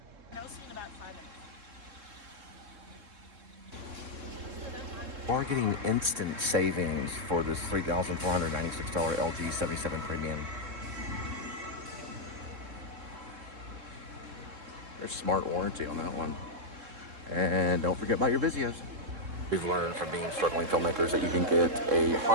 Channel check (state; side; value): late; left; 3.7 ms